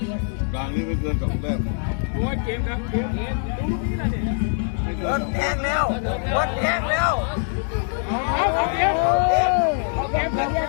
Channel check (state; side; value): silent; right; 56 dB below the other